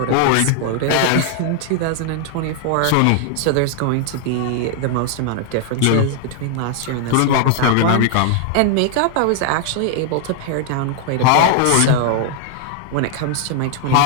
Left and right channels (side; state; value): both; different; correlation 0.00